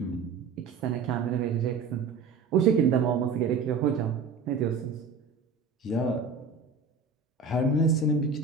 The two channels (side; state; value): left; quieter; 4.8 dB